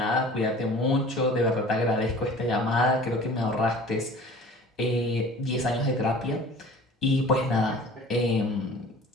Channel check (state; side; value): normal; both; correlation 0.44